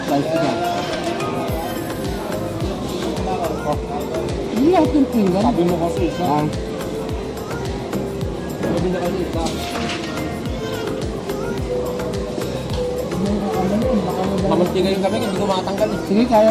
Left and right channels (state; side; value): identical; both; correlation 1.00